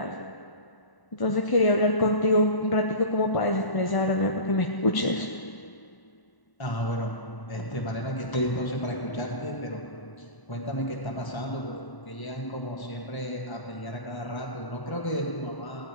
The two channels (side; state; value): right; late; 1.0 ms